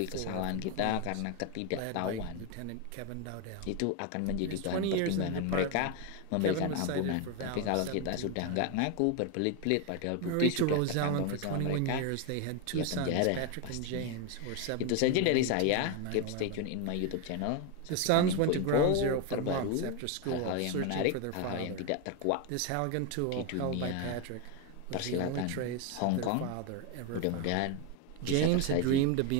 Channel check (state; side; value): different; both; correlation 0.01